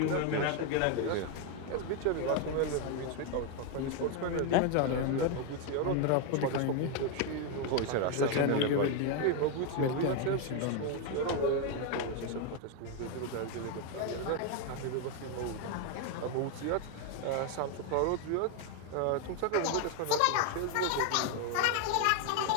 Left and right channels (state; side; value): different; both; correlation 0.01